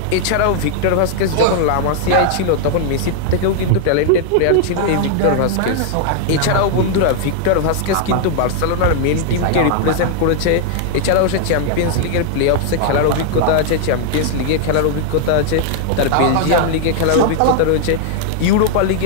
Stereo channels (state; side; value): different; both; correlation -0.01